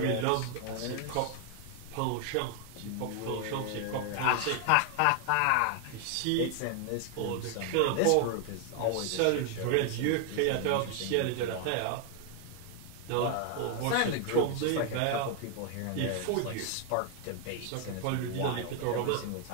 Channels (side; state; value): both; different; correlation 0.00